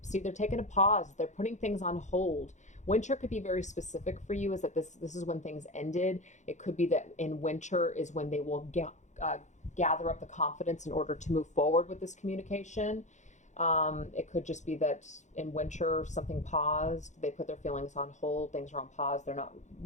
See, they're taking a pause. They're putting things on hold. Winter could be very specific for you, is that this is when things ended. It could be that in winter is when they will gather up the confidence in order to move forward with this communication. It could just be that in winter something paused. They put their feelings on hold. Things are on pause. They're not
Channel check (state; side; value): late; right; 0.35 ms